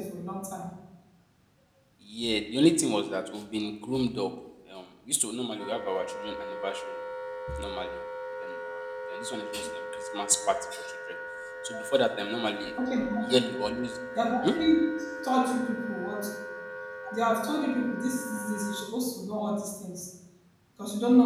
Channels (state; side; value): identical; both; correlation 1.00